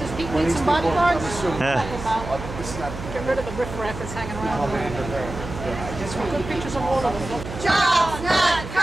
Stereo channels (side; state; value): right; noise; hum, 10 dB below the sound